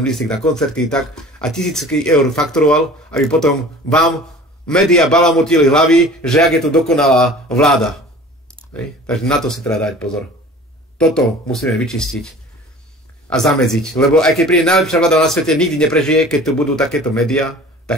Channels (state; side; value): normal; both; correlation 0.43